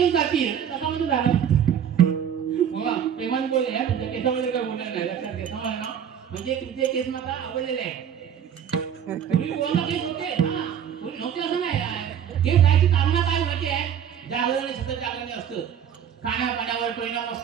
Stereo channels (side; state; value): left; quieter; 8.8 dB